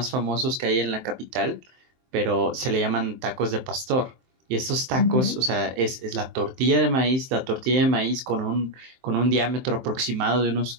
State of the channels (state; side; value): late; left; 23 ms